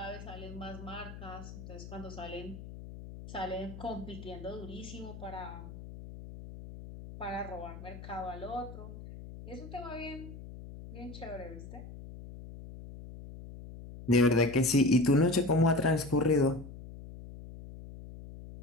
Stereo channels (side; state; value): left; noise; hum, 13 dB below the sound